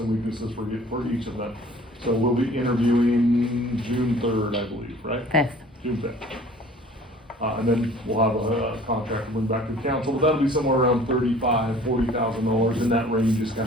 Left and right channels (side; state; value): both; normal; correlation 0.50